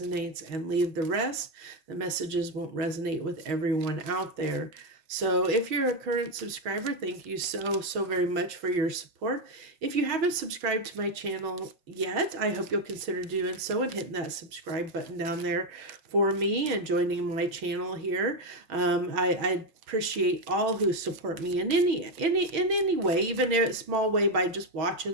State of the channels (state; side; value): late; left; 6.3 ms